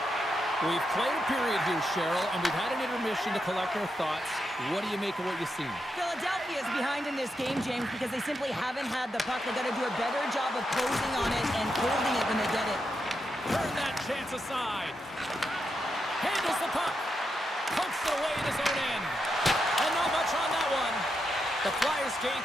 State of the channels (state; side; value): normal; both; correlation 0.84